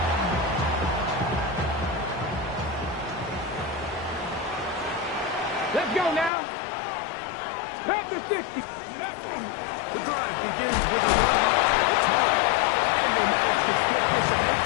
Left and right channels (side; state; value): right; drops out; at 6.3 s